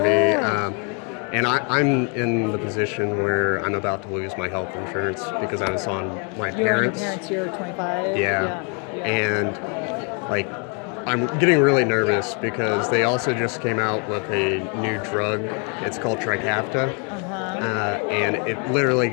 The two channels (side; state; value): right; quieter; 37.3 dB